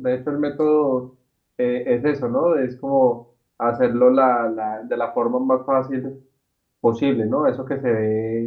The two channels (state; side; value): identical; both; correlation 1.00